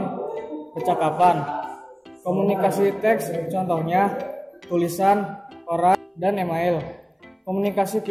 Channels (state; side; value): identical; both; correlation 1.00